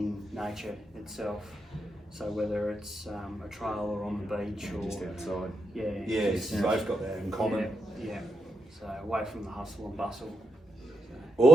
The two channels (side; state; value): both; normal; correlation 0.84